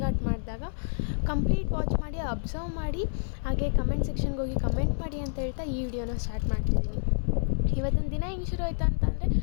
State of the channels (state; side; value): silent; right; digital silence